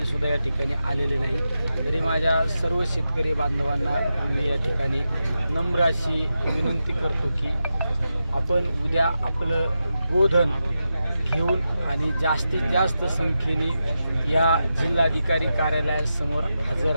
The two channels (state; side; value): inverted; both; correlation -0.89